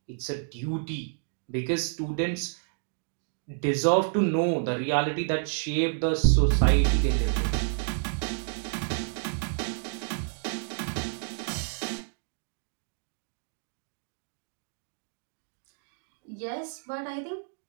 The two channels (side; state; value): left; silent; digital silence